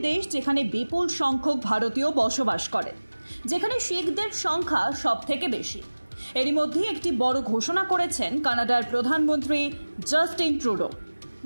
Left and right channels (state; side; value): inverted; both; correlation -1.00